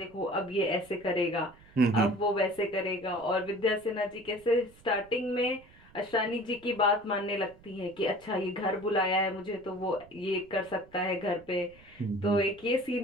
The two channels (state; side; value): noise; right; rumble, 25 dB below the sound